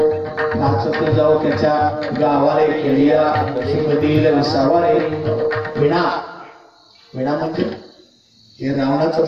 नाचत जाऊ त्याच्या गावारे खेळिया कधी सवारे. विणा विणा म्हणजे हे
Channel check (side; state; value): both; identical; correlation 1.00